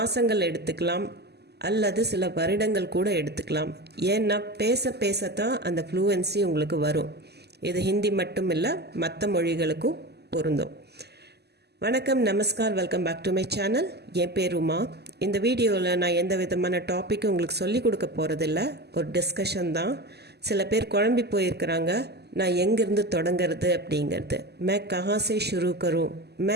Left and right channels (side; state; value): left; late; 0.48 ms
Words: எடுத்துக்கலாம் அல்லது சில வருடங்கள் கூட எடுத்துக்கலாம். ஏன்னா பேசத்தான் அந்த ஃப்ளூவன்சி உங்களுக்கு வரும். இது ஹிந்தி மட்டும் இல்லை, மற்ற மொழிகளுக்கும் பொருந்தும். வணக்கம், நமஸ்கார், welcome back to my channel. என் பேர் உமா. இந்த வீடியோவில் நான் எந்த விதமான டாப்பிக்கும் உங்களுக்கு சொல்லிக் கொடுக்க போகிறதில்ல, ஒரு டிஸ்கஷன் தான். சில பேர் குழம்பி போயிருக்கிறாங்க, நான் எங்கேருந்து தொடங்கிறது அப்படிங்கிறது. மே கஹாசே ஷுரு கரும்,